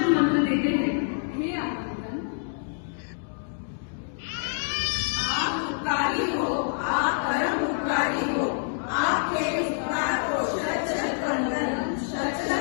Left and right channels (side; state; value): right; silent; digital silence